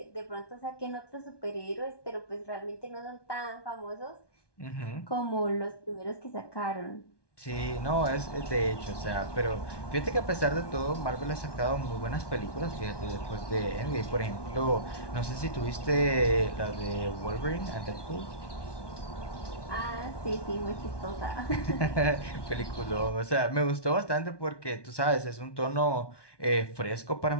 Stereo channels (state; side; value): late; right; 1.2 ms